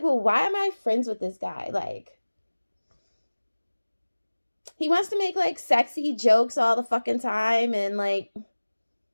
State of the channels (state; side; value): inverted; both; correlation -1.00